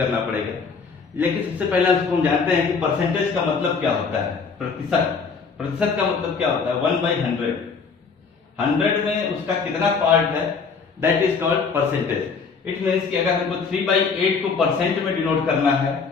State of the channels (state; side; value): quieter; right; 5.2 dB